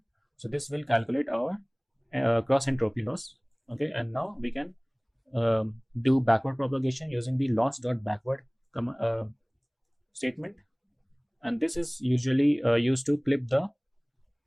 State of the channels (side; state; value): both; identical; correlation 1.00